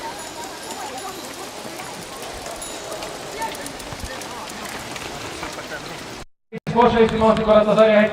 Porsche Eesti maastikurattasarja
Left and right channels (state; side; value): identical; both; correlation 1.00